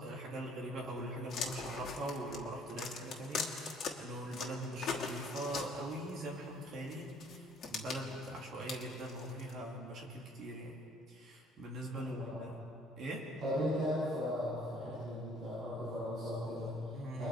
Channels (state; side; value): normal; both; correlation 0.59